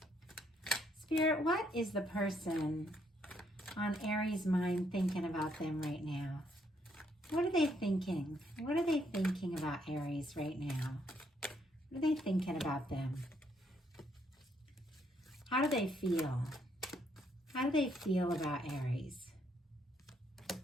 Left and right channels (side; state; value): both; normal; correlation 0.72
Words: Spirit, what is the person on Aries' mind thinking about them right now? What are they thinking? What are they thinking about Aries right now? What are they thinking about them? How do they feel? How do they feel about Aries?